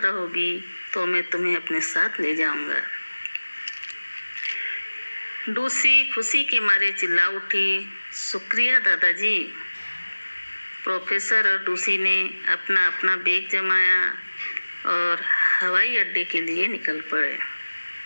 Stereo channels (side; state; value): both; inverted; correlation -1.00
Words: तो मैं तुम्हें अपने साथ ले जाऊंगा। लूसी खुशी के मारे चिल्ला उठी, शुक्रिया दादाजी। प्रोफेसर और लूसी ने अपना अपना बैग जमाया और हवाई अड्डे के लिए निकल पड़े।